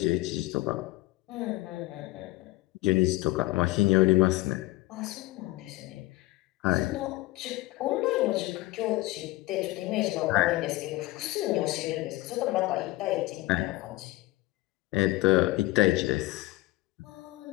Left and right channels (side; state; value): right; quieter; 19.3 dB